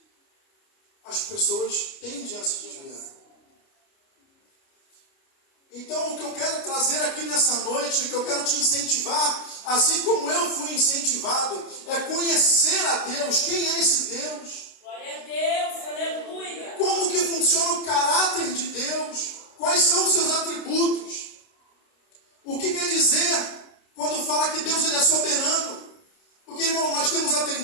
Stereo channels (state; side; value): late; right; 29 ms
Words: as pessoas tendem a se desviar. Então, o que eu quero trazer aqui nessa noite, o que eu quero te incentivar, assim como eu fui incentivado, é conhecer a Deus. Quem é esse Deus? Glória a Deus, aleluia. Como que funciona o caráter de Deus? Quais são os seus atributos? O que quer dizer quando fala que Deus ele é soberano? Porque, irmão, nós temos a